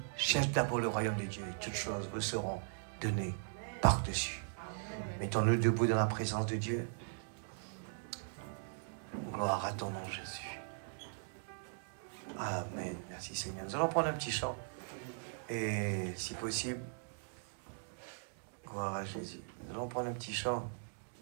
cherche d'abord le royaume de Dieu et toutes choses vous seront données par-dessus. Mettons-nous debout dans la présence de Dieu. Gloire à ton nom, Jésus. Amen. Merci Seigneur. Nous allons prendre un petit chant. Et si possible, gloire à Jésus. Nous allons prendre un petit chant.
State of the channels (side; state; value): left; silent; digital silence